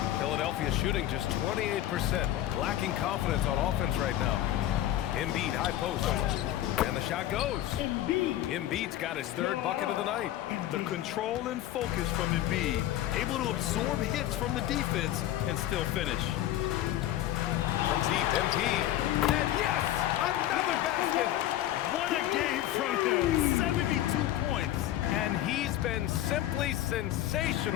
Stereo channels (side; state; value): right; quieter; 13.3 dB